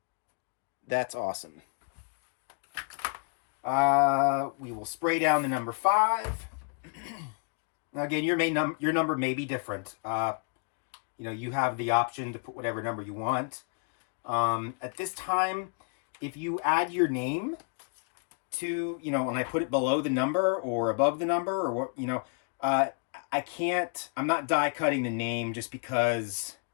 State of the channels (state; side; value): quieter; right; 39.9 dB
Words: That's awesome. We will spray down the number 5. Now again, your number may be different. You know, you have the option to put whatever number you want. At this time, if you add your name to, you know, and I put it below the number or above the number or what, you know, I'm not die cutting the name just because